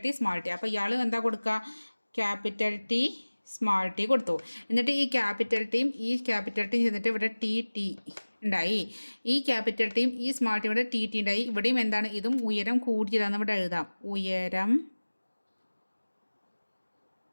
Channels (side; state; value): both; inverted; correlation -1.00